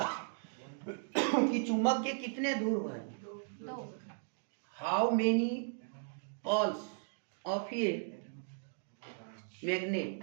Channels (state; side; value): silent; left; digital silence